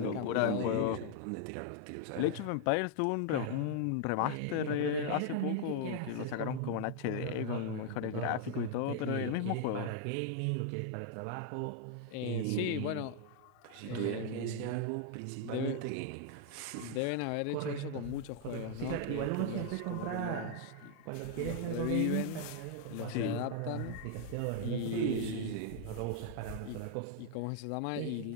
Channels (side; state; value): both; different; correlation 0.00